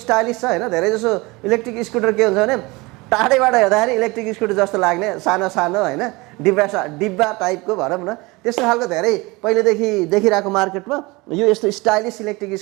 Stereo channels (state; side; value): quieter; left; 23.8 dB